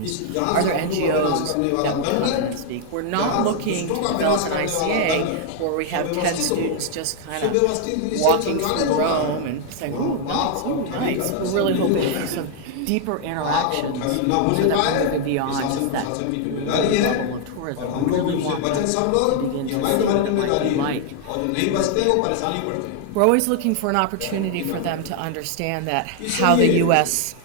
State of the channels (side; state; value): both; different; correlation 0.00